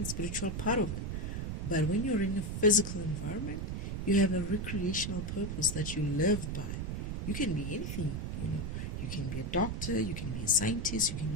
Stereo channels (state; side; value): noise; right; rumble, 3 dB below the sound